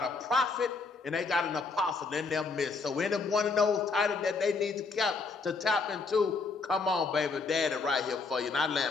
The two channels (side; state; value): right; quieter; 4.3 dB